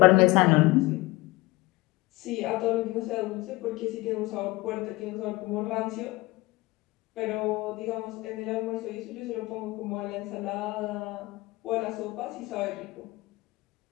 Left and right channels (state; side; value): quieter; right; 21.0 dB